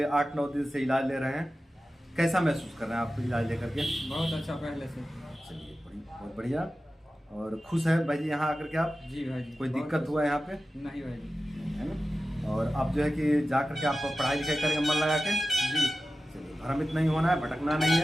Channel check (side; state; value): both; normal; correlation 0.94